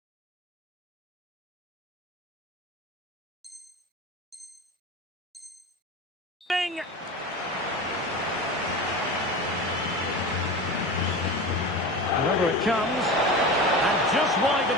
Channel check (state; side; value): normal; both; correlation 0.29